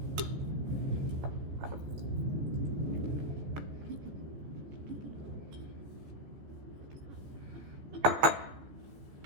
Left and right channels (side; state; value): left; late; 14 ms